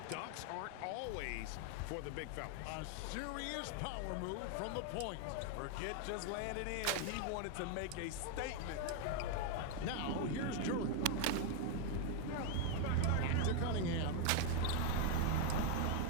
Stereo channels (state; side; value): different; both; correlation 0.00